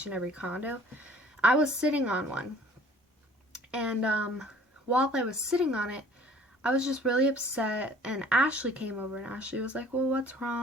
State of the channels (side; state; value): both; normal; correlation 0.53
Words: and every condo. I was sitting on one, and, while I was sitting on it, I was just really upset, and Ashley came over, and Ashley was like, well, what's